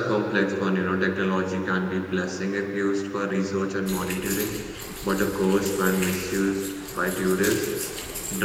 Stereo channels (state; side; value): identical; both; correlation 1.00